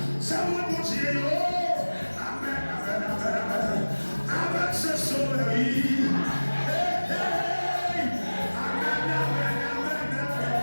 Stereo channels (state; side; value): inverted; both; correlation -1.00